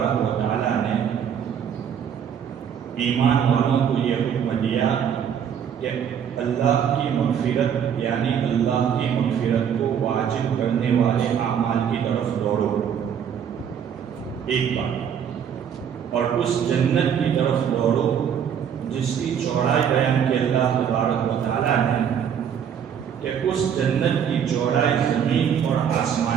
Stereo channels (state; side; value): quieter; left; 8.3 dB